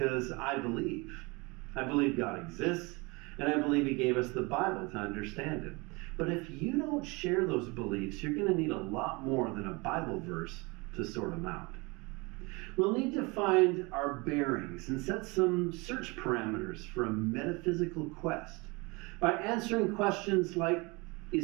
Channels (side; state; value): left; quieter; 26.7 dB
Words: I believe. I believe God exists, and I believe He gave us the Bible to understand it. But if you don't share those beliefs, you're going to need a lot more than a Bible verse to sort them out. We'll need to find our bearings and set some search parameters for a metaphysical quest by answering questions like,